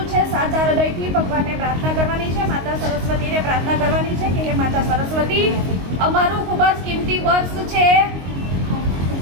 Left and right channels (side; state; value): left; late; 22 ms